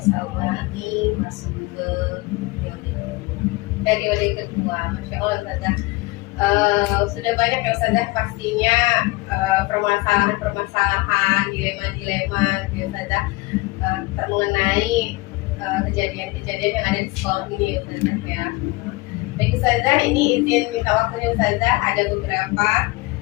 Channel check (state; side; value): quieter; right; 22.5 dB